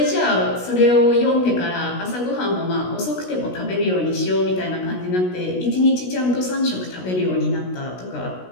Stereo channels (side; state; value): right; late; 16 ms